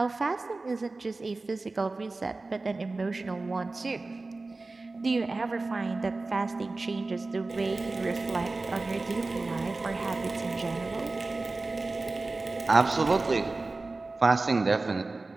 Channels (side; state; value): left; quieter; 3.4 dB